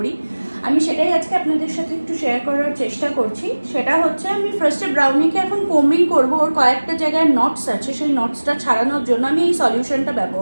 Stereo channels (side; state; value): both; inverted; correlation -1.00